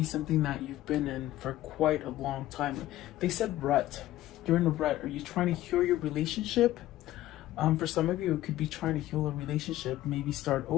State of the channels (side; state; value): right; quieter; 14.8 dB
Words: something that you've been in for quite a long time. They said rut. You're in a rut. Are you trying to heal your relationship? For some of you, it could be trying to heal a relationship, maybe start